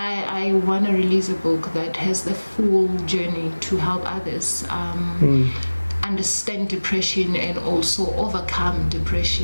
want to release a book that has the full journey to help others understand depression and also overcome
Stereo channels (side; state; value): both; inverted; correlation -1.00